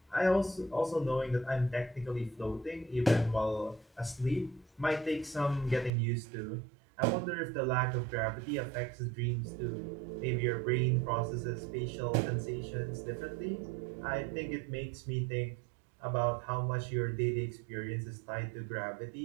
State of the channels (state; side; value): drops out; left; at 5.9 s